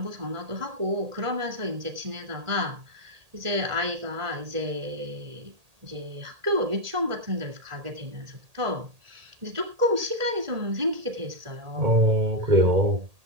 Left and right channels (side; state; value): left; late; 1.8 ms